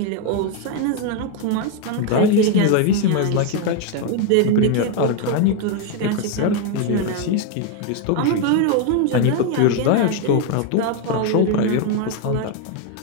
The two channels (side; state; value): both; different; correlation 0.01